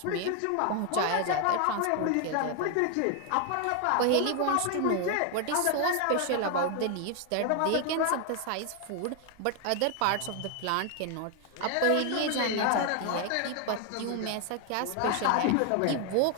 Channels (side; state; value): both; different; correlation 0.01